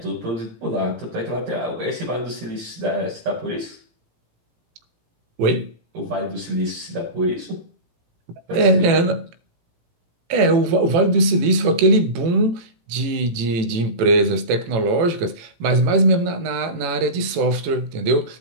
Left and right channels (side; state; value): left; late; 18 ms